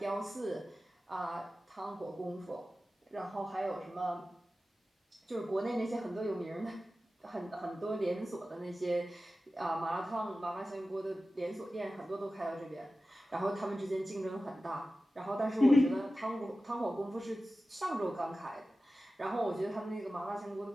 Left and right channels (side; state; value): both; normal; correlation 0.95